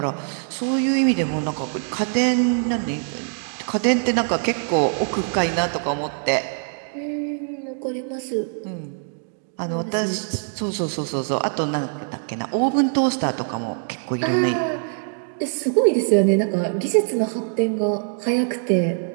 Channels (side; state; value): left; silent; 63 dB below the other